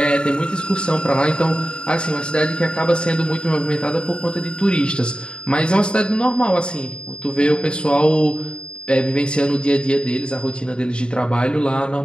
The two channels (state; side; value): late; right; 0.052 ms